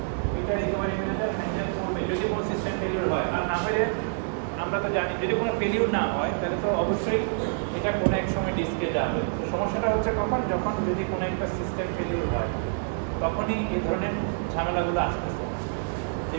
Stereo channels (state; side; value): silent; left; 60 dB below the other